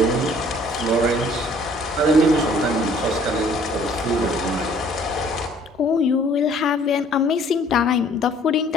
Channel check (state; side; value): normal; both; correlation 0.57